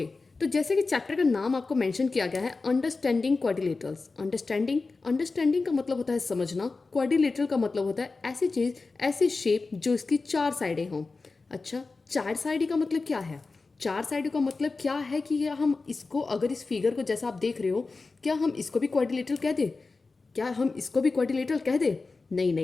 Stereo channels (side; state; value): right; quieter; 3.9 dB